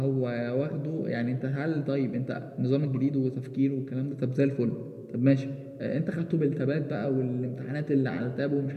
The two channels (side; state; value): both; identical; correlation 1.00